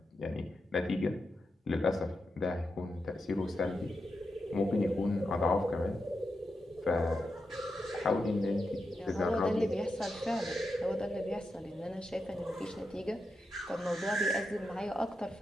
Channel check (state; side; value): normal; both; correlation 0.88